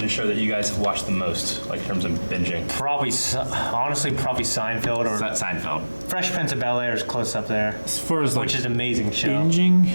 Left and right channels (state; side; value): inverted; both; correlation -1.00